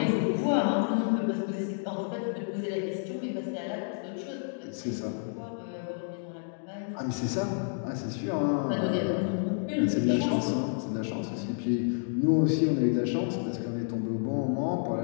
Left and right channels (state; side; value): silent; right; digital silence